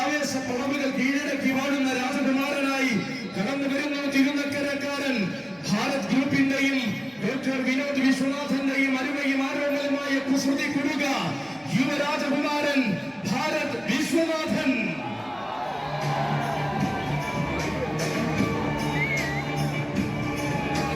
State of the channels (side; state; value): both; identical; correlation 1.00